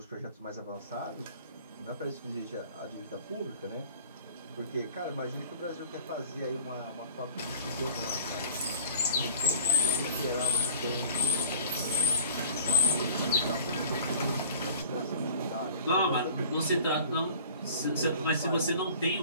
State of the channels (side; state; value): both; inverted; correlation -0.47